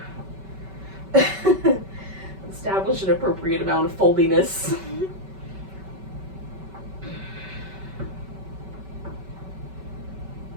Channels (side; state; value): left; late; 5.2 ms